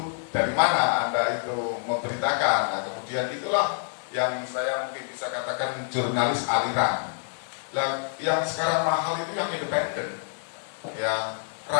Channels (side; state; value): right; silent; 60 dB below the other